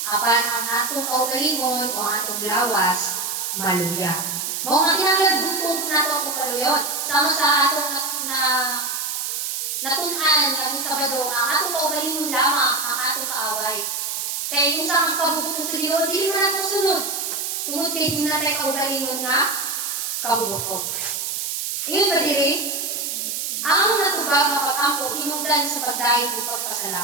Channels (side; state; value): right; noise; hiss, 2 dB below the sound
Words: Apan ang atong kaugalingon o ang atong lawas, maluya. Mao nga kinahanglan butong nato ang kaluyon. Sama sa atong natunan ng Sabado, ang atong kaugalingon lamang ang atong kaaway. Kaya kung sa ang kabubuton sa Ginoo, di naman natin sunod. Tungod kay di natin kaugalingon nga kabubuton. Iyon ba diri? Ang natubag nga pag-ampo hinungdan sa pagdayon ug